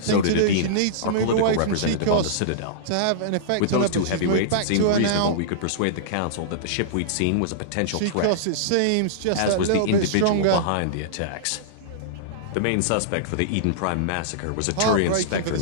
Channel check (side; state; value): both; different; correlation -0.03